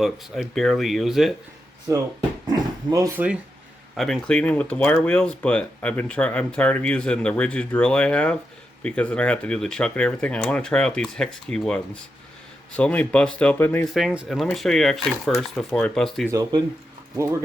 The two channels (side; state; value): both; normal; correlation 0.86